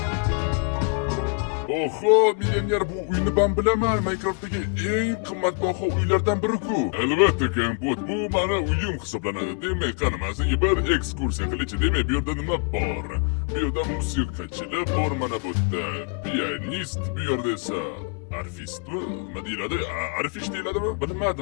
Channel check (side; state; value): right; quieter; 35.5 dB